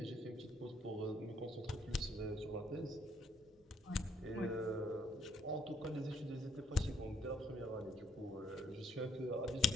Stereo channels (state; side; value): normal; both; correlation 0.68